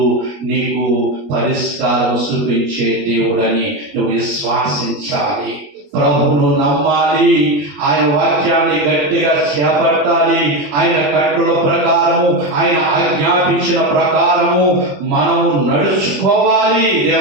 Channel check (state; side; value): late; left; 21 ms